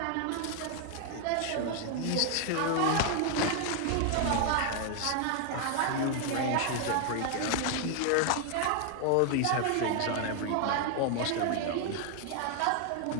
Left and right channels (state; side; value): different; both; correlation 0.00